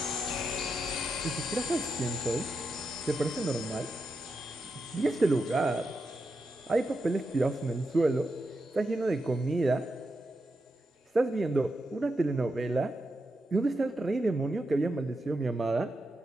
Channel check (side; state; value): both; normal; correlation 0.86